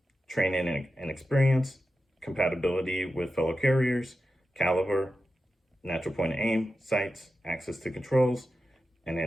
training and experience, compatibility with fellow carriers, caliber, natural point of aim, sights, access to controls, and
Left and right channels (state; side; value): normal; both; correlation 0.91